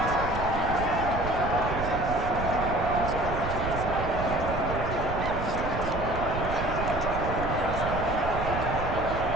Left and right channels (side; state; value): right; noise; rumble, 5 dB below the sound